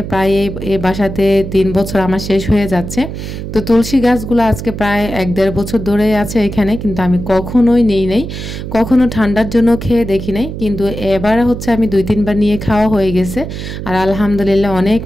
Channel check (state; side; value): noise; right; hum, 8 dB below the sound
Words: প্রায় এই বাসাতে 3 বছর আমার শেষ হয়ে যাচ্ছে। তো তুলসী গাছগুলো আজকে প্রায় 1-1.5 বছর ধরে আছে এখানে, কিন্তু আমি কখনোই নিই নাই, কখনো ঠান্ডার জন্য খেয়ে দেখি নাই, কিন্তু এবার হচ্ছে আমি 2-3 বার নিয়ে খাওয়া হয়ে গেছে। আর আলহামদুলিল্লাহ অনেক